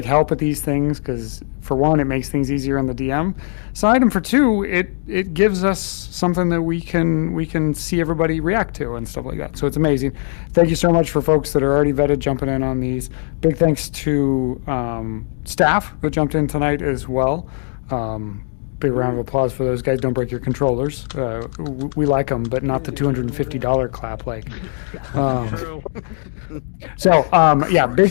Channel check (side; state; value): right; silent; digital silence